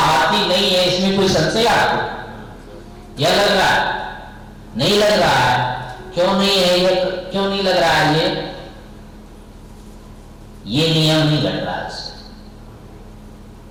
नहीं है, इसमें कोई संशय आपको? यह लग रहा है? नहीं लग रहा है। क्यों नहीं है ये? क्यों नहीं लग रहा है ये नियम नहीं घट रहा है।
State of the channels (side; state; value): both; identical; correlation 1.00